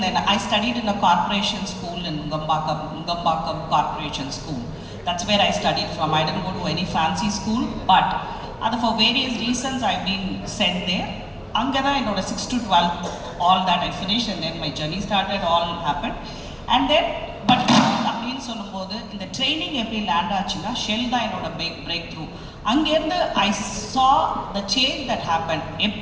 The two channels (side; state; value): both; identical; correlation 1.00